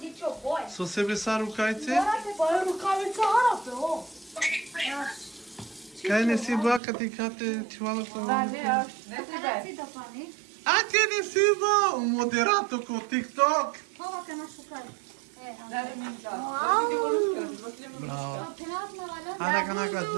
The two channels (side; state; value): left; drops out; at 6.8 s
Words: boj. So sebe sar rukajte? Pa je rukavica harape, o. Kaj ne si ba kad ti kate čuvala pa Da, ne, ne Када тебе. си да пани? A ti ne si ba moderato ko TikTok. Това ка на шукај. Ne, ne, ne. Bravo. Пенат на валя. Hada kana